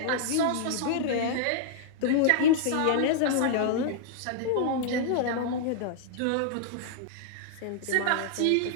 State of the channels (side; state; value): both; different; correlation -0.01